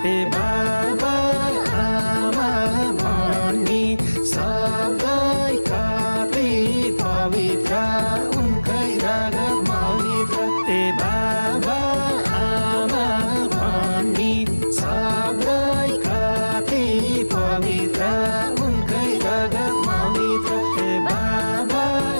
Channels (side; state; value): both; inverted; correlation -1.00